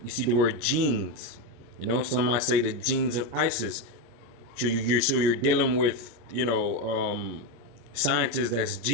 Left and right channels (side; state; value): left; late; 25 ms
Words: You see the word genes. You know, some might say the genes of Isis. So you're dealing with scientists that's